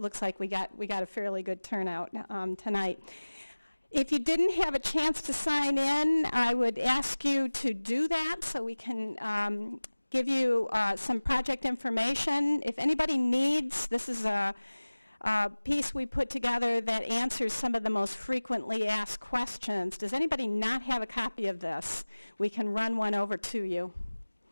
like we got a fairly good turnout tonight. If you didn't have a chance to sign in, I would ask you to do that so we can give you some project information. If anybody needs, this is a piece we put together that answers some of the most frequently asked questions. Does anybody not have a copy of this? We can run one over to you.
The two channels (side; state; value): both; inverted; correlation -1.00